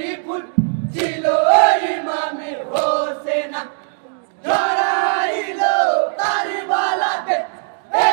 ফুল ছিল ইমামে হোসেন ছড়াইলো কারবালাতে এ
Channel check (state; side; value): silent; left; 66 dB below the other